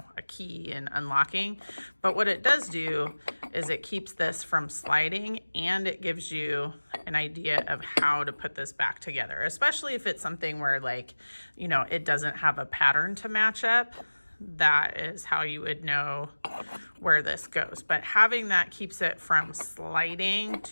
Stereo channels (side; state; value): both; inverted; correlation -1.00